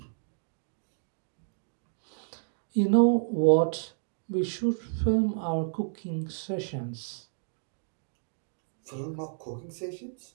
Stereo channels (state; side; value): silent; left; digital silence